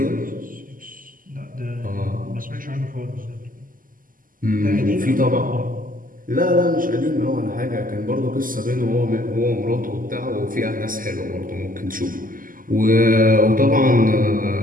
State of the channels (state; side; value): late; left; 0.41 ms